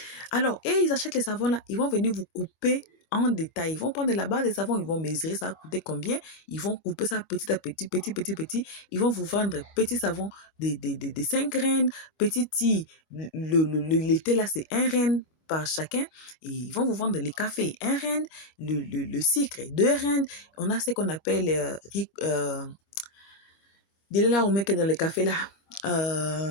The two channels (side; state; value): right; late; 25 ms